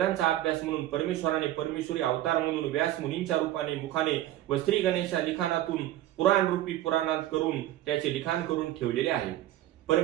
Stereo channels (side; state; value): left; quieter; 13.9 dB